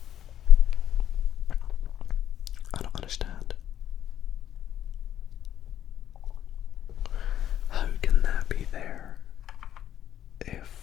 I don't understand. How can that be there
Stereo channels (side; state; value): right; quieter; 10.8 dB